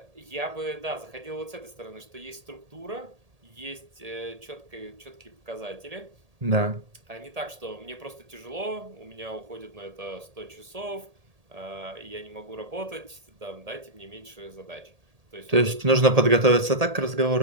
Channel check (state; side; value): late; left; 1.8 ms